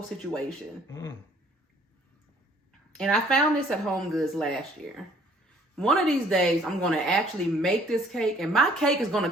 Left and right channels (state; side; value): normal; both; correlation 0.59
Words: situation. Mm. And I found this at Home Goods last year. One of these days, I'm going to actually make this cake, and my cake is going to